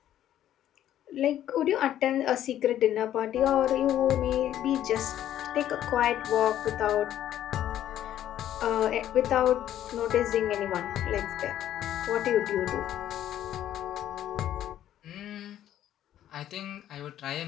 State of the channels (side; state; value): right; quieter; 11.7 dB